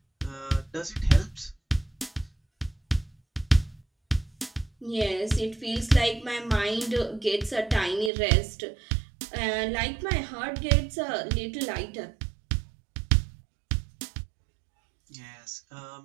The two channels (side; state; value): left; drops out; at 8.1 s